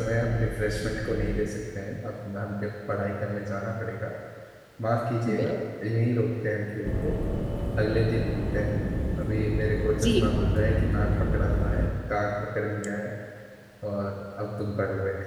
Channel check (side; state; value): both; identical; correlation 1.00